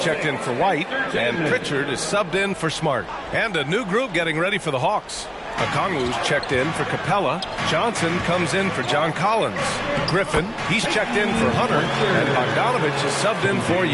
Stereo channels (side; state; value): both; identical; correlation 1.00